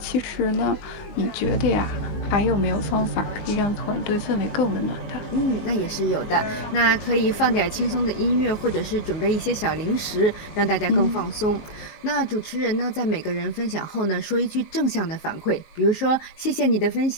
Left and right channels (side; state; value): right; late; 19 ms